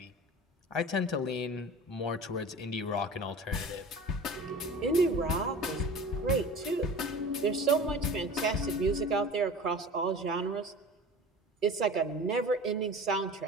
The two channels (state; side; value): normal; both; correlation 0.37